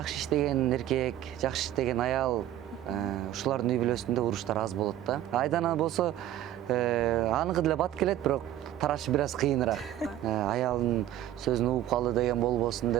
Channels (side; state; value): left; quieter; 12.6 dB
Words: иштеген эркек, жакшы иштеген аял ушулардын үй бүлөсүндө уруштар аз болот да. Айдана болсо аныкы деле бат келет, бирок тарашы бир аз кыйыныраак. Аялдын сөзүн угуп калды деген болбосун